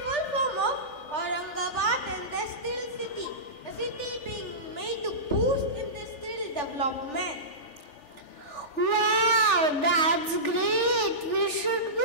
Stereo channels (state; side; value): late; right; 3.4 ms